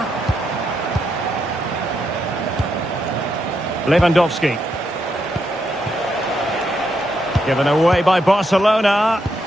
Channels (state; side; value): normal; both; correlation 0.80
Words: Lewandowski. Given away by Barcelona.